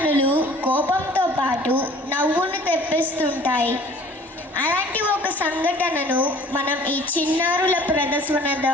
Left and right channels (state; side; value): normal; both; correlation 0.50